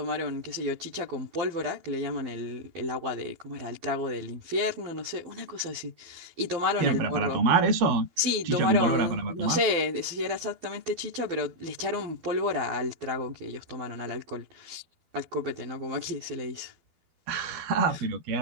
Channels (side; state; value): left; late; 12 ms